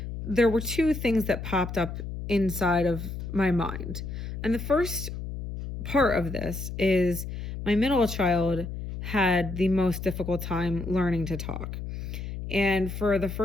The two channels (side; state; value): left; noise; hum, 7 dB below the sound